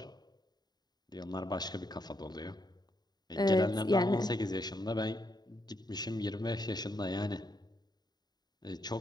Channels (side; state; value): right; late; 0.20 ms